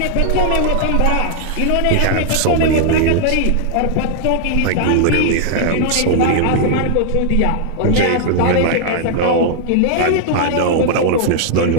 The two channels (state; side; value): different; both; correlation 0.00